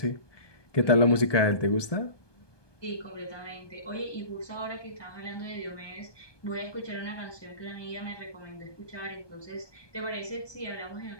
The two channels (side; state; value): right; late; 1.2 ms